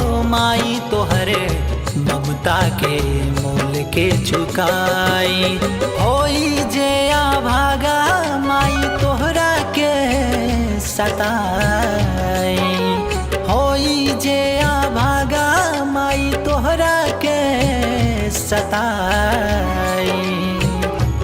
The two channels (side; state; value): both; identical; correlation 1.00